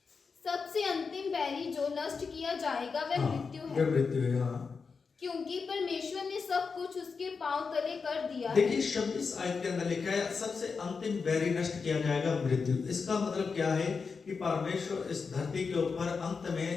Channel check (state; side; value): quieter; right; 5.1 dB